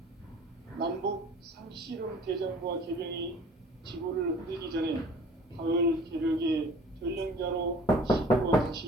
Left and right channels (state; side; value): normal; both; correlation 0.48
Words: 남북 상씨름 대전과 개병이 지구를 흔들기 전에 가을 개벽의 전령자로 시대와